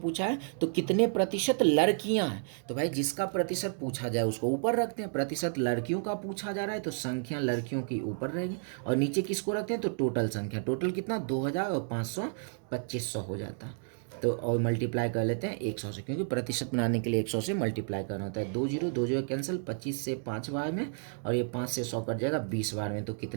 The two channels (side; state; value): left; silent; 57 dB below the other